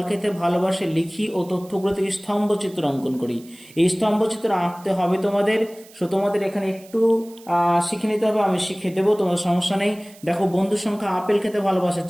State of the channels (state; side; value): noise; right; hiss, 23 dB below the sound